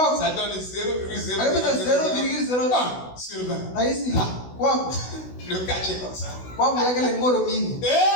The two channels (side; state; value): right; late; 16 ms